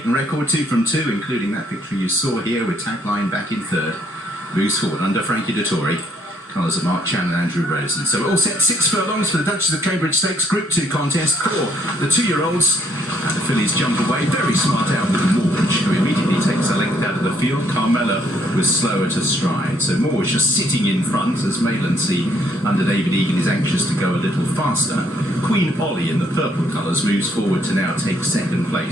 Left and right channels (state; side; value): normal; both; correlation 0.68